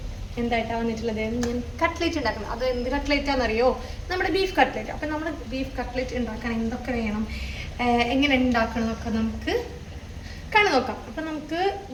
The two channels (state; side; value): identical; both; correlation 1.00